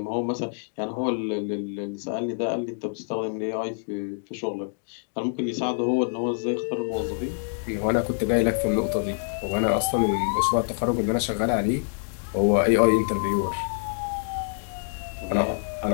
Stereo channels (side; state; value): right; silent; digital silence